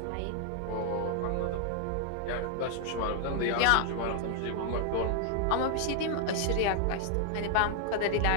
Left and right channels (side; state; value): both; different; correlation 0.00